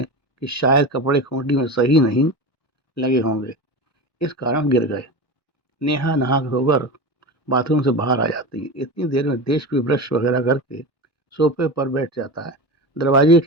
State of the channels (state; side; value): late; right; 1.1 ms